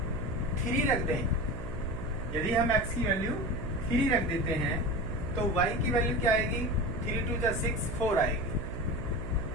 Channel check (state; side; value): noise; right; hum, 10 dB below the sound